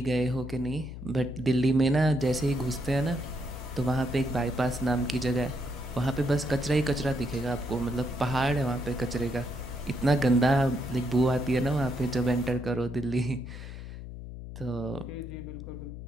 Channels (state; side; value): noise; left; hum, 10 dB below the sound